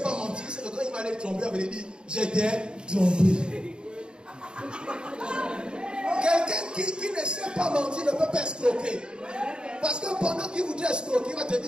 pas mentir, c'est que quand il va aller tromper, il va lui dire, j'étais trompé. Quelqu'un qui ne sait pas mentir ne peut pas escroquer. Parce que pendant qu'il voudrait escroquer, il va te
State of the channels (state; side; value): late; left; 0.050 ms